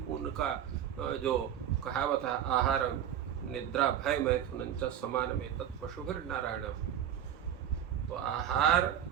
उनका जो कहावत है, आहार निद्रा भय मैथुन च समान में तत्पशुभिर नारायणम। तो आहार,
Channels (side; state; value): left; quieter; 10.0 dB